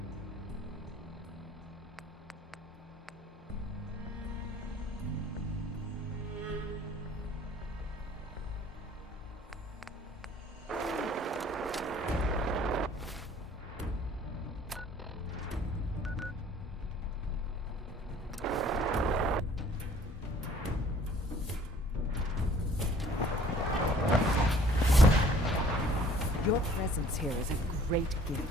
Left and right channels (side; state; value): both; normal; correlation 0.54